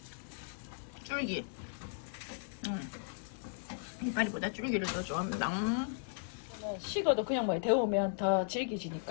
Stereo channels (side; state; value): right; silent; 54 dB below the other